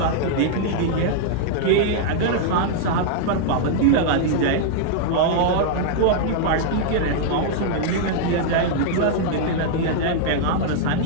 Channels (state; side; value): different; both; correlation -0.01